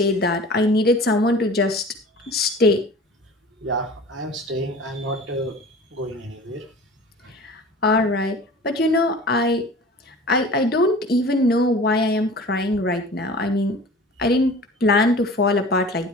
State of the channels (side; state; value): both; normal; correlation 0.41